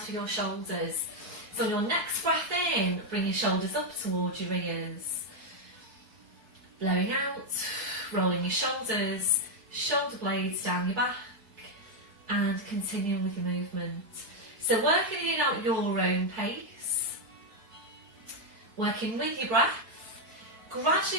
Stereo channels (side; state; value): left; late; 4.6 ms